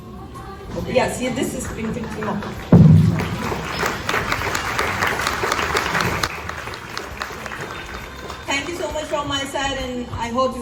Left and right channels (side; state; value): both; identical; correlation 1.00